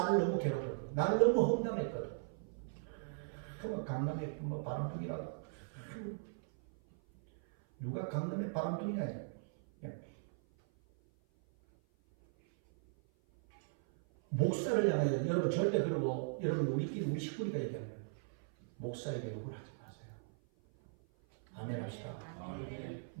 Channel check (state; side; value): silent; left; 52 dB below the other